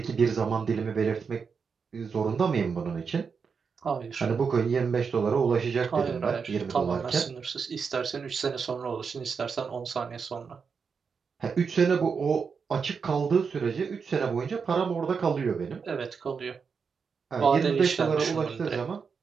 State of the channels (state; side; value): quieter; left; 5.7 dB